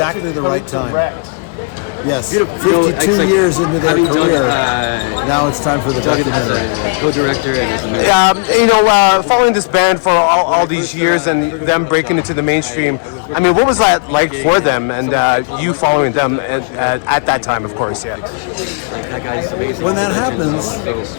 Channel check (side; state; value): right; quieter; 38.3 dB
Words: the right time. Yes, 52 years into their career, now it's time for the documentary. Co-director and Following this band for all these years and them breaking into the mainstream, I mean, what was that like for them and you following them at that time, of course, yeah. When that happens